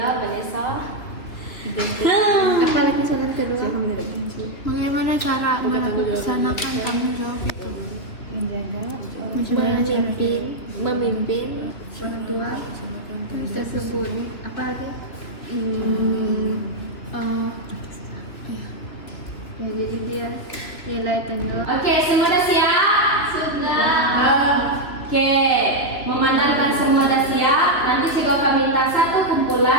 Vanessa. Apalagi soalan kedua? Bagaimana cara melaksanakan tanggung jawab itu? Memimpin orang tua tersebut. Apa lagi? Ya, jadi dia nilai tanggung. Oke, semua dah siap? Sudah. Oke, memandangkan semua dah siap, nanti saya akan minta satu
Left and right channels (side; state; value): right; late; 3.1 ms